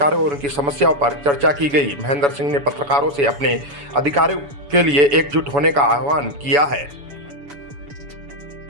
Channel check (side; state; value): left; late; 7.0 ms